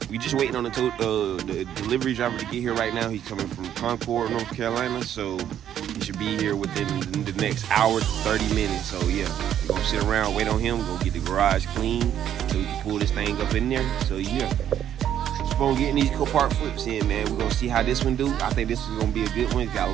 we just waiting on the delivery driver to get here right now. He's coming from Concord, North Carolina, so he should be here within the next hour to 30 minutes. So yeah, we're gonna sit around, wait on him, go get the garage clean so we can pull this thing up in there. So yeah, just gonna get these Copart flips in, man. We're gonna see how this one do. I think this is gonna be a good one. It's got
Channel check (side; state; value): left; quieter; 10.3 dB